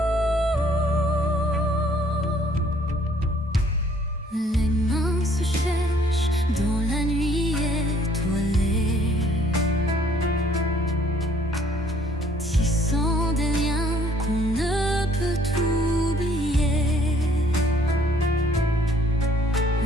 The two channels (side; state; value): both; normal; correlation 0.61